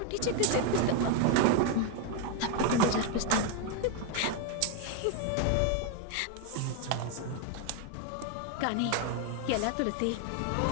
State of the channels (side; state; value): both; different; correlation 0.01